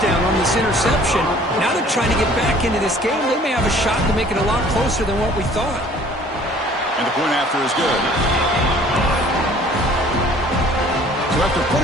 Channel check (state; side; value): normal; both; correlation 0.53